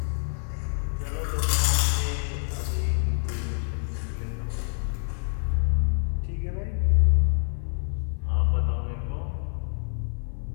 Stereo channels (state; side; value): silent; right; 55 dB below the other